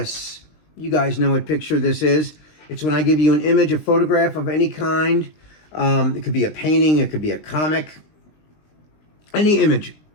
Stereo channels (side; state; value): right; late; 19 ms